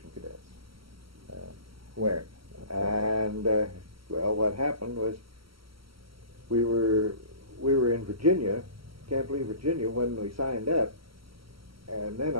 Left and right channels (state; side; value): late; left; 0.75 ms